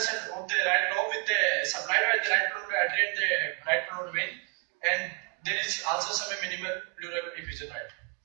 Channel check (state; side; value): quieter; left; 33.0 dB